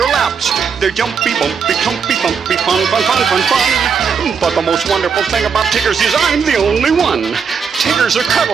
laps. They're jumpy, bumpy, clumpy, thumpy, fun, fun, fun, fun, fun. But the most wonderful thing about Tiggers is I'm the only one. Tiggers are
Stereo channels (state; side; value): quieter; left; 6.2 dB